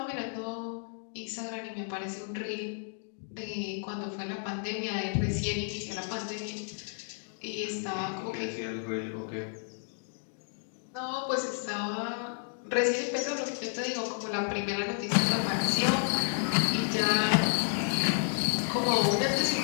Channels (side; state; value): right; silent; 57 dB below the other